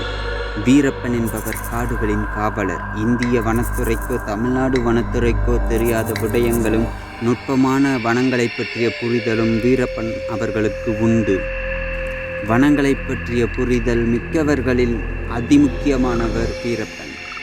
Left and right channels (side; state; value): both; identical; correlation 1.00